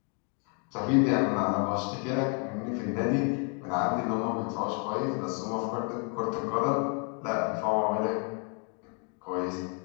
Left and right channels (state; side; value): quieter; right; 38.4 dB